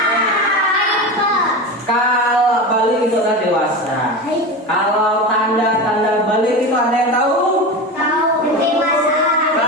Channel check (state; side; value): normal; both; correlation 0.24